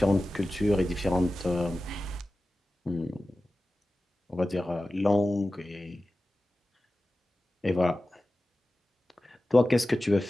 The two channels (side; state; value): both; normal; correlation 0.95